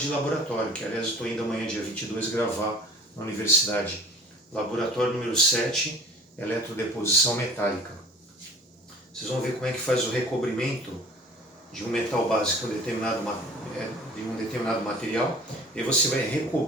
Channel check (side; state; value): both; normal; correlation 0.46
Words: laboratório, que aliás eu estou indo amanhã, dia 22, gravar na universidade. Laboratório número 7, eletrodeposição metálica. Vocês vão ver como é que faz o recobrimento de um metal básico de um determinado material, e você vai